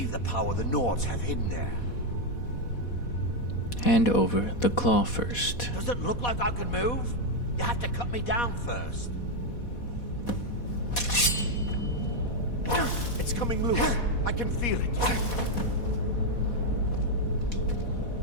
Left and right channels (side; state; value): right; late; 4.1 ms